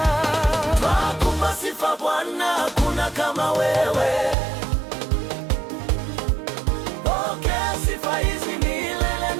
Twakupa sifa Bwana, hakuna kama wewe. Pokea sifa hizi milele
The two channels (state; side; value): drops out; left; at 4.4 s